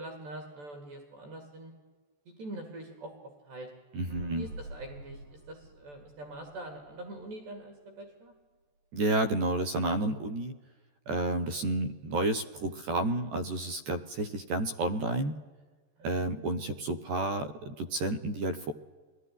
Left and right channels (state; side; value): late; left; 14 ms